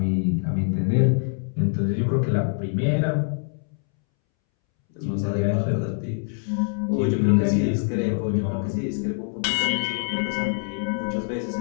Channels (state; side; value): silent; right; 62 dB below the other